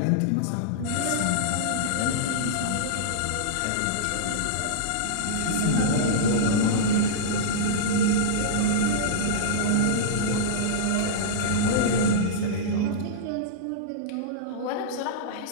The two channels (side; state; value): both; different; correlation -0.03